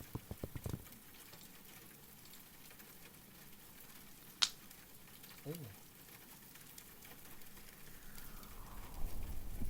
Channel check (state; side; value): identical; both; correlation 1.00